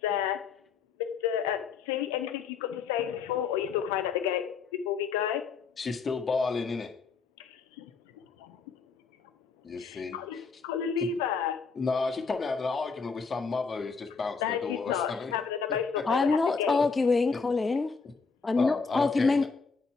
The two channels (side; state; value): right; quieter; 5.1 dB